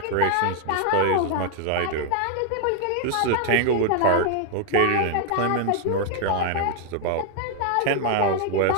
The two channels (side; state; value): both; different; correlation 0.00